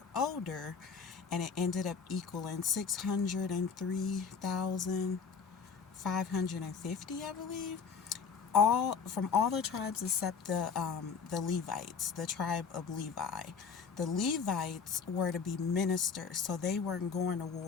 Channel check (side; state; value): right; quieter; 5.8 dB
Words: older, and it ended up equaling 603,550, I believe, all from all the tribes except the Levites, the tribe of Levi. The Levites were to be ministers, so they weren't going to